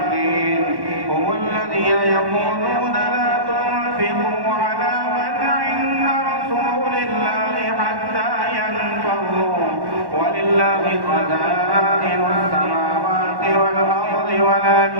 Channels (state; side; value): late; left; 1.1 ms